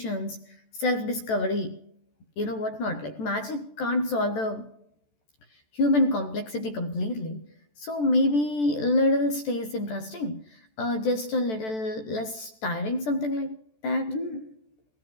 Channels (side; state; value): right; late; 14 ms